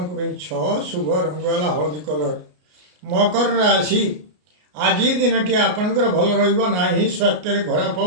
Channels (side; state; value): left; late; 33 ms